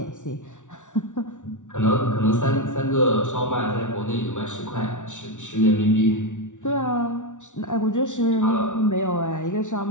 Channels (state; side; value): late; right; 0.86 ms